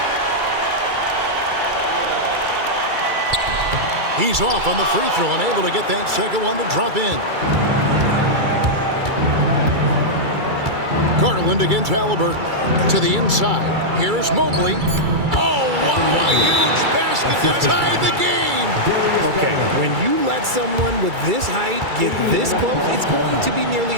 He's off on the free throw and able to get that second one to drop in. Garland against Halliburton. To the inside. Here's Mobley. Oh, wow, a huge basket to tie the game. Okay, when you let someone with this height get this close, it's going to be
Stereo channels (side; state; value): left; late; 2.3 ms